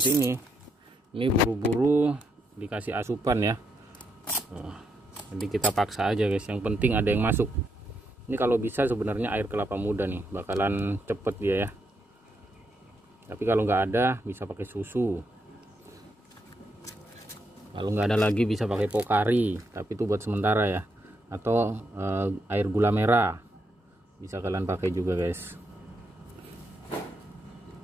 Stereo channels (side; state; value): both; normal; correlation 0.80